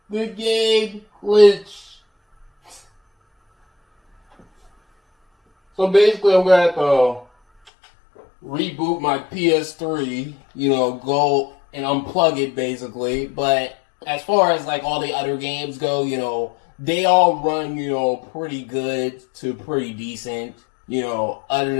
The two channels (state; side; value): drops out; right; at 7.7 s